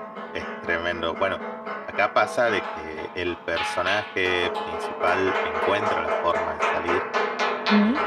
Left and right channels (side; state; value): both; identical; correlation 1.00